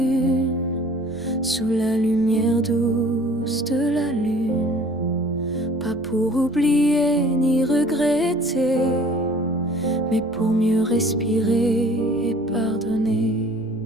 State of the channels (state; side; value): noise; right; rumble, 27 dB below the sound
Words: sous la lumière douce de la lune. pour oublier ni regretter, mais pour mieux respirer et pardonner.